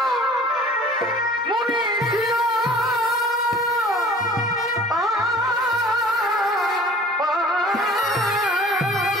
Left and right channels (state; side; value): normal; both; correlation 0.47